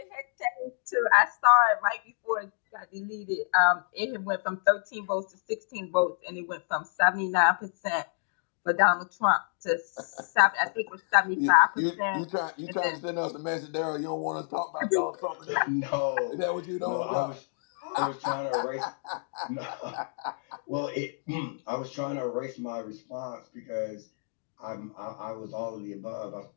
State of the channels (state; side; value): silent; right; digital silence